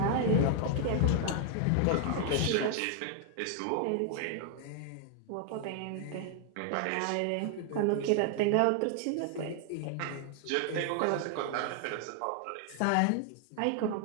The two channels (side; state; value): both; different; correlation 0.00